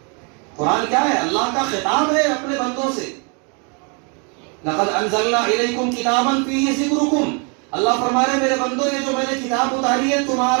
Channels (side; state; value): left; quieter; 35.4 dB